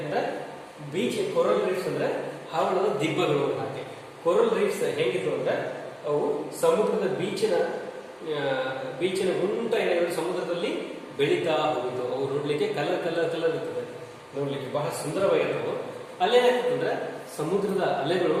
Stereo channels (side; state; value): both; identical; correlation 1.00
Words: ಬೀಚ್ ಕೊರಲ್ ರೀಫ್ಸ್ ಅಂದ್ರೆ ಹವಳದ ದಿಬ್ಬಗಳು. ಹಾಗೆ ಕೊರಲ್ ರೀಫ್ಸ್ ಹೇಗಿತ್ತು ಅಂದ್ರೆ ಅವು ಸಮುದ್ರದ ಬೀಚಿನ ಉಂಟ ಏನಾದ್ರು ಸಮುದ್ರದಲ್ಲಿ ಬೆಳೀತಾ ಹೋಗಿತ್ತು. ಅವು ನೋಡ್ಲಿಕ್ಕೆ ಕಲರ್ ಇರ್ತದೆ, ನೋಡ್ಲಿಕ್ಕೆ ಬಹಳ ಸುಂದರವಾಗಿರ್ತವು. ಅಲ್ಲೇನಾಗ್ತದೆ ಅಂದ್ರೆ ಸಮುದ್ರದ ಅಲೆಗಳು